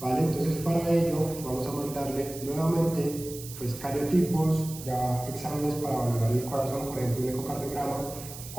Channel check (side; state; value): right; noise; hiss, 13 dB below the sound